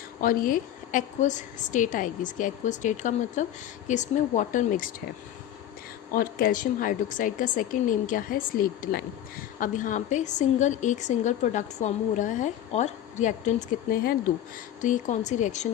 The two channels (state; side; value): quieter; right; 11.4 dB